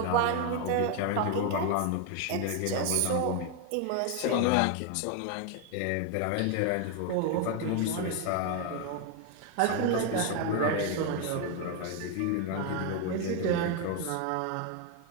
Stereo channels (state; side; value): different; both; correlation 0.01